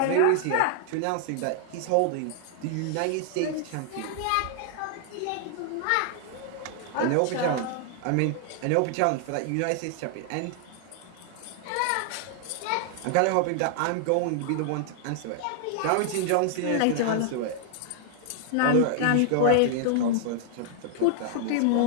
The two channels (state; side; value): different; both; correlation 0.00